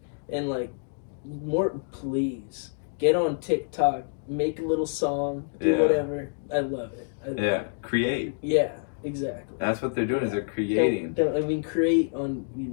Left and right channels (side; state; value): right; silent; digital silence